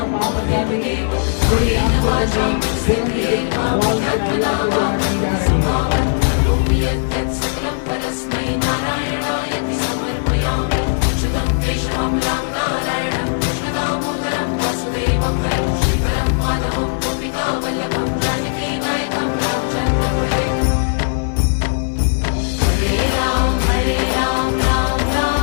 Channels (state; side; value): silent; right; 67 dB below the other